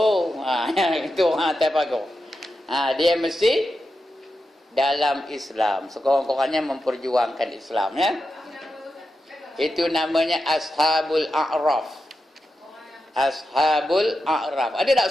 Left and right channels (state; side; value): normal; both; correlation 0.89